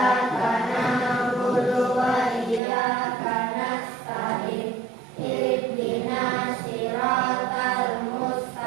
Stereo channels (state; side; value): drops out; left; at 2.6 s